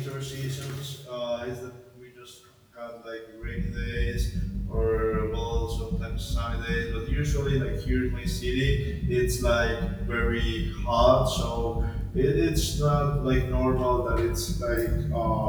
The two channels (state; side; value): identical; both; correlation 1.00